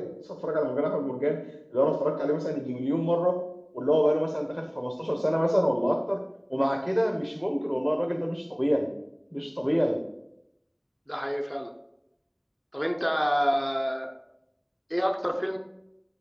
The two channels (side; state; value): both; identical; correlation 1.00